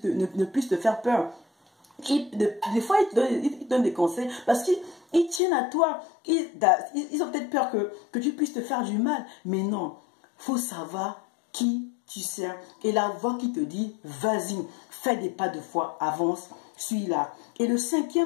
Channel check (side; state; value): right; drops out; at 5.4 s